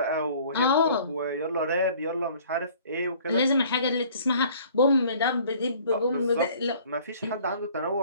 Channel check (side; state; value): both; inverted; correlation -0.53